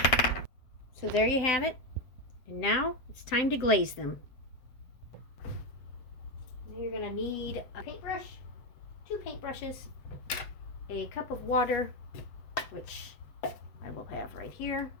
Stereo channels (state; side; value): late; right; 7.8 ms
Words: So there you have it. And now it's time to glaze them. You're going to need a paintbrush, 2 paintbrushes, a cup of water, which I will have right here.